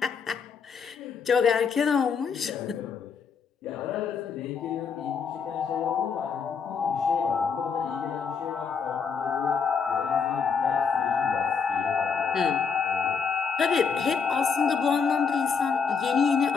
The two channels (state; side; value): quieter; right; 5.9 dB